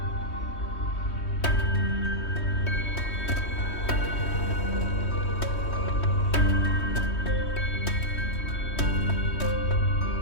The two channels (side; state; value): right; late; 3.2 ms